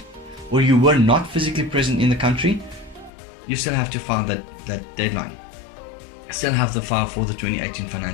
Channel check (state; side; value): drops out; right; at 3.1 s